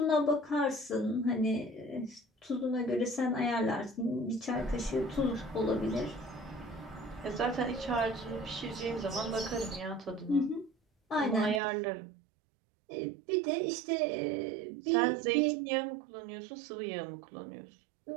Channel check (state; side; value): drops out; left; at 11.6 s